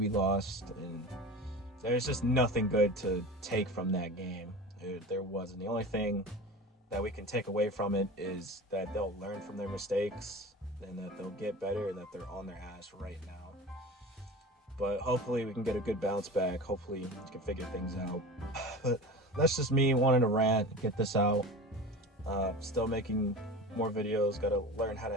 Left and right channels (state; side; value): normal; both; correlation 0.33